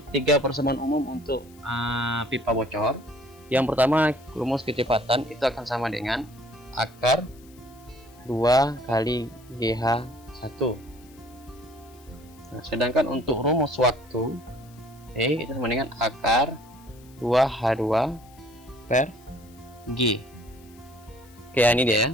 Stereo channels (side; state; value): left; noise; hiss, 27 dB below the sound